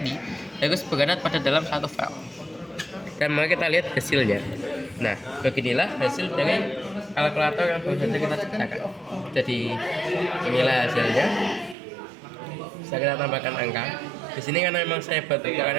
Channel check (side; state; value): left; drops out; at 11.8 s